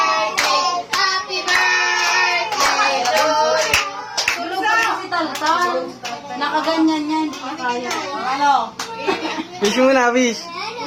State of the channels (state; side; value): identical; both; correlation 1.00